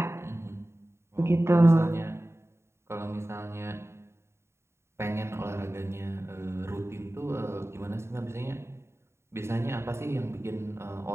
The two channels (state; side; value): late; left; 0.13 ms